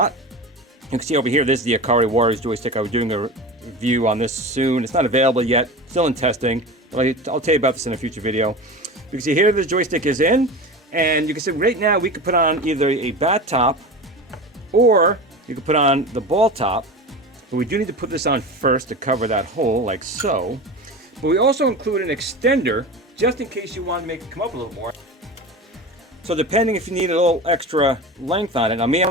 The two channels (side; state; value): both; normal; correlation 0.29